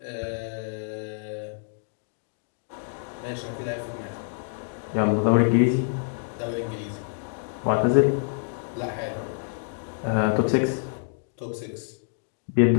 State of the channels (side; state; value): right; silent; digital silence